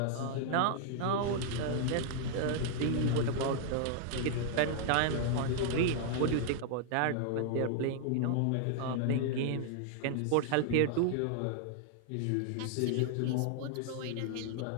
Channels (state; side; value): different; both; correlation -0.01